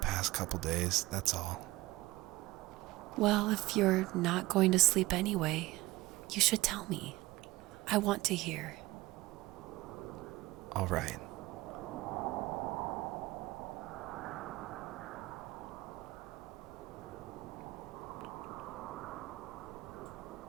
couple days, that's all. Well, if you're not going to sleep anyway, you should tell me. I want to hear. All right.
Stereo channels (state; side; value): quieter; left; 19.4 dB